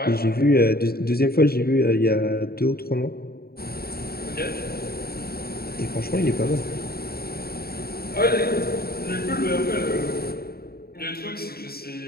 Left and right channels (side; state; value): right; late; 0.45 ms